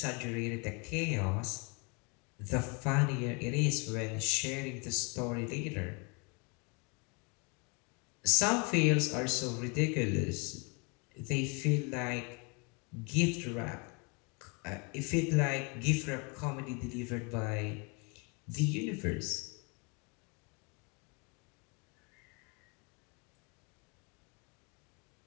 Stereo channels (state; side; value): quieter; right; 32.4 dB